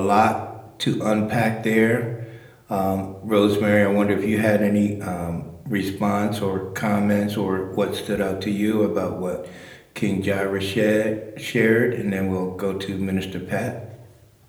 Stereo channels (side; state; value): both; identical; correlation 1.00